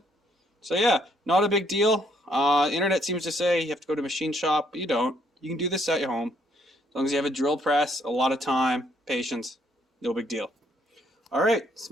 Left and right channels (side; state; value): both; normal; correlation 0.68